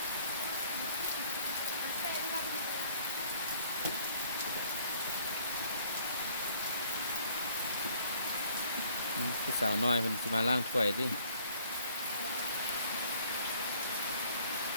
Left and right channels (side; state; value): both; inverted; correlation -0.62